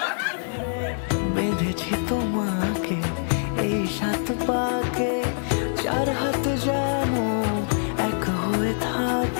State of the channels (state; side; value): silent; right; digital silence